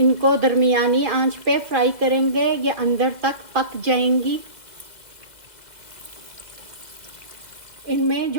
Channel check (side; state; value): left; late; 2.1 ms